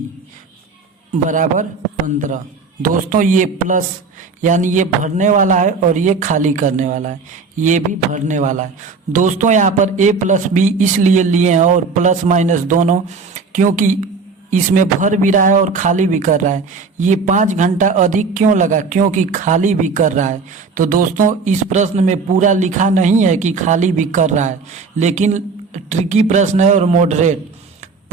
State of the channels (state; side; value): quieter; left; 4.6 dB